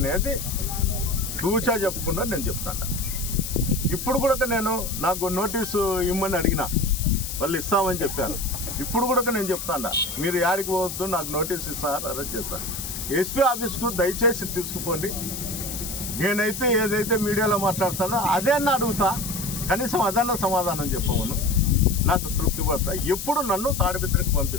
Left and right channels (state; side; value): noise; left; hiss, 6 dB below the sound